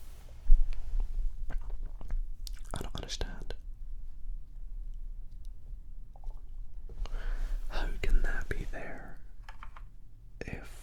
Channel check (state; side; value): identical; both; correlation 1.00